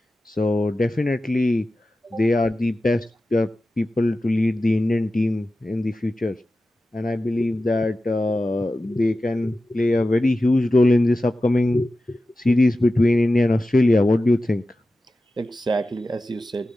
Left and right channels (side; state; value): both; normal; correlation 0.93